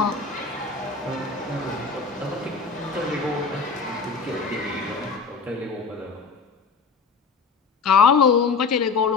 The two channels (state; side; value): quieter; right; 4.9 dB